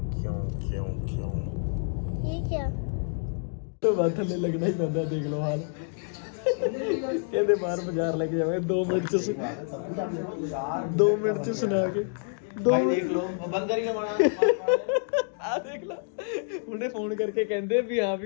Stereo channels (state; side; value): silent; right; 59 dB below the other